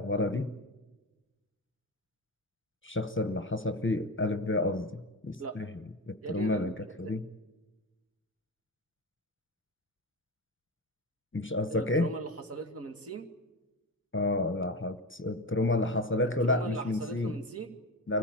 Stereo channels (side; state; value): both; normal; correlation 0.22